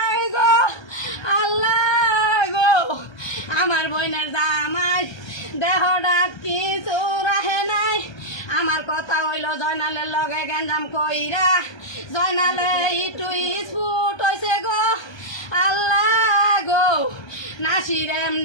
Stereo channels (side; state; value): right; late; 1.3 ms